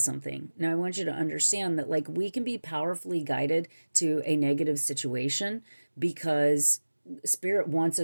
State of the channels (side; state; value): both; inverted; correlation -1.00